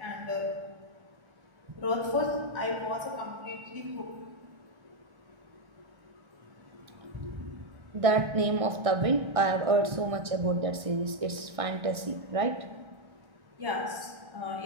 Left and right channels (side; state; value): left; late; 1.6 ms